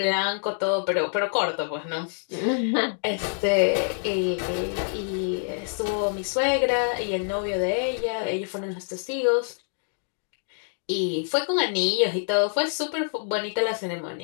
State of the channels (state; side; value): silent; right; 61 dB below the other